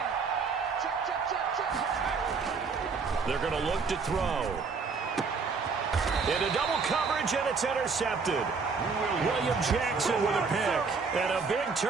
They're going to look to throw. Into double coverage, and it's intercepted. William Jackson with a pick. And a big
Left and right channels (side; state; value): left; quieter; 5.0 dB